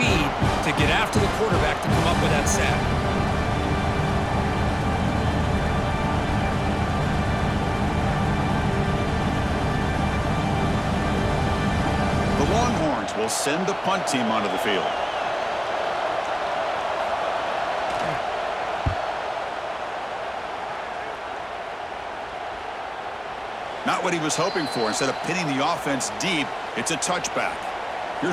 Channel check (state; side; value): identical; both; correlation 1.00